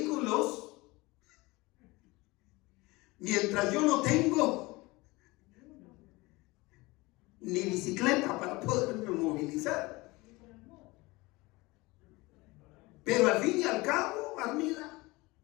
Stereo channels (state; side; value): quieter; right; 22.5 dB